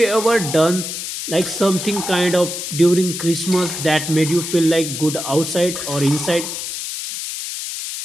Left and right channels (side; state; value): left; noise; hiss, 6 dB below the sound